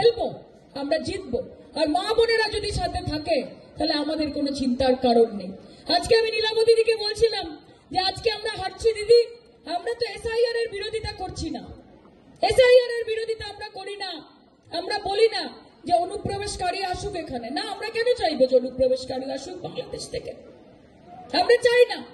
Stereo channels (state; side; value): identical; both; correlation 1.00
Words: আমরা জিতবো। আর মা বোনেরা যদি সাথে থাকে তাহলে আমাদের কোনো চিন্তার কারণ নেই। আজকে আমি নীলাবতী দিদিকে বলছিলাম যে আজকে আমরা হাঁটছি দিদি, আমরা তো এসআইআর এর বিরোধিতা করছি না। এসআইআর এর বিরোধিতা আমরা করি না। আমরা বলি না যে অনুপ্রবেশকারী আসুক এখানে, না। আমরা কেন চাইবো যে অনুপ্রবেশকারী আসুক বাংলাদেশ থেকে? আমরা চাই না।